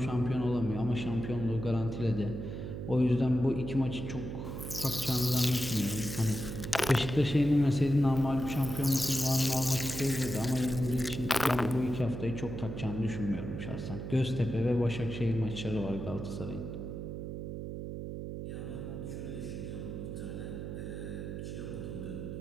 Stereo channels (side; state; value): right; noise; hum, 6 dB below the sound